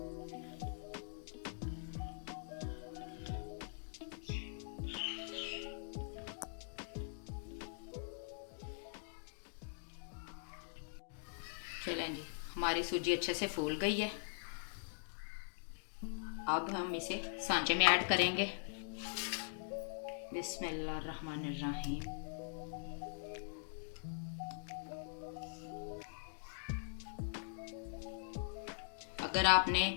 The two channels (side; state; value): right; silent; digital silence